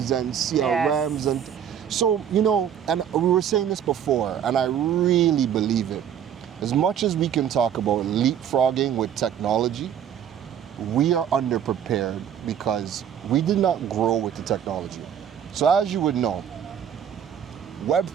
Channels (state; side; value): quieter; left; 9.0 dB